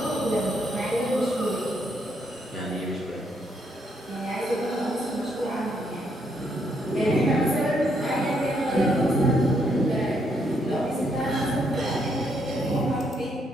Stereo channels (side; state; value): both; normal; correlation 0.74